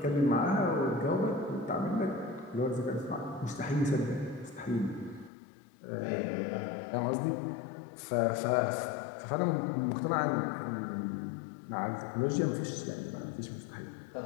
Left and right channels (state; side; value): drops out; right; at 5.3 s